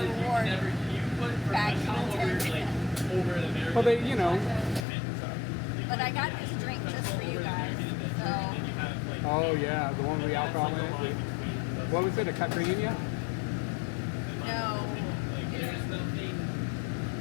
reward bad content. well, they, you know. But I got this drink just for you guys. So. Oh yeah, the one with the alcohol in it. What was it? A caipirinha? No.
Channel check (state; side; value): drops out; right; at 4.9 s